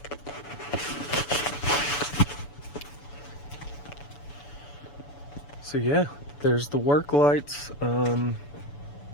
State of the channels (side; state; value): right; late; 6.9 ms